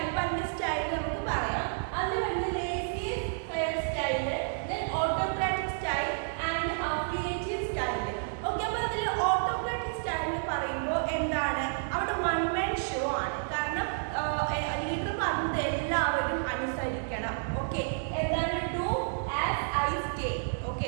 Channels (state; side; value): silent; left; 57 dB below the other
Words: എല്ലാവരും അനുസരിക്കണം. ഓക്കെ, എന്താണ് do as I stay.